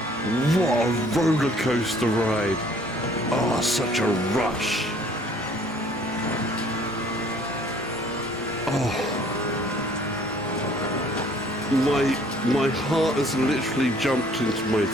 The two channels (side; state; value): both; normal; correlation 0.57